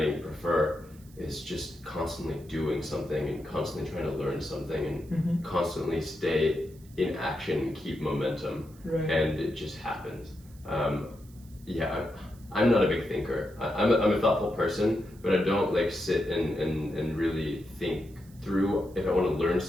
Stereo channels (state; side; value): noise; right; hiss, 26 dB below the sound